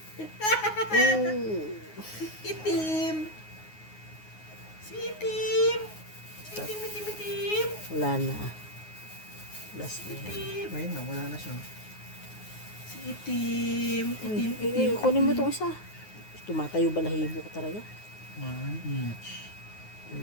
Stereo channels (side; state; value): right; late; 9.5 ms